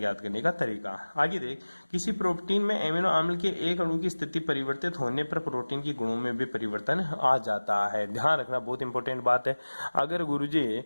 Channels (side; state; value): both; inverted; correlation -1.00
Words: करने का तरीका। आगे देख, किसी प्रोटीन में एमिनो अम्ल के एक अणु की स्थिति परिवर्तित होने पर प्रोटीन के गुणों में भी परिवर्तन आ जाता है। ध्यान रखना, बहुत इंपॉर्टेंट बात है। अगर गुरुजी